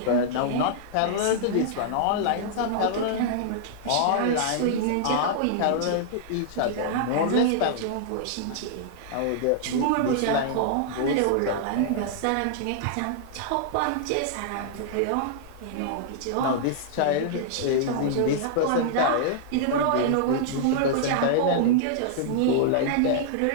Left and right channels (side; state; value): both; different; correlation -0.01